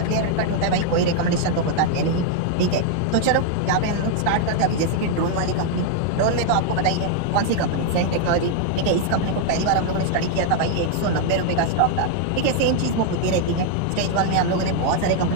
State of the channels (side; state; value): both; different; correlation 0.00